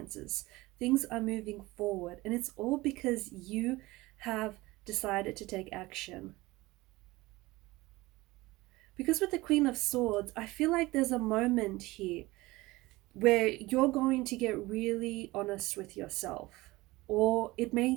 Things are moving forward, and it's all because you have decided to take action. Because with the Queen of Swords, I feel like there's a moment here where you're going to get really honest with yourself. Or it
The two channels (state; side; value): quieter; left; 20.3 dB